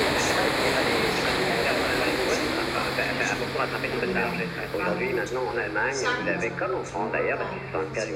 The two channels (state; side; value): identical; both; correlation 1.00